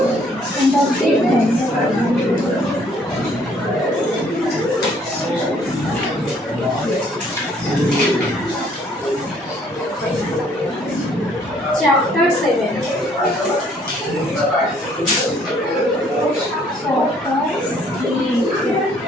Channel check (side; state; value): both; normal; correlation 0.62